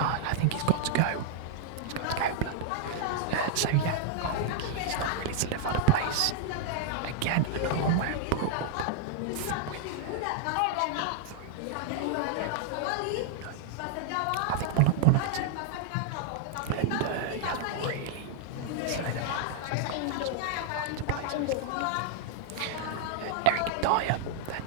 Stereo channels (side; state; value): both; different; correlation -0.01